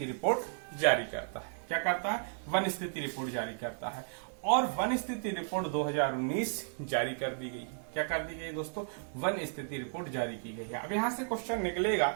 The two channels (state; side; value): silent; left; digital silence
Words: रिपोर्ट जारी करता है। क्या करता है? वन स्थिति रिपोर्ट जारी करता है। और वन स्थिति रिपोर्ट 2019 जारी कर दी गई। क्या कर दी गई दोस्तों? वन स्थिति रिपोर्ट जारी की गई है। अब यहां से क्वेश्चन निकलेगा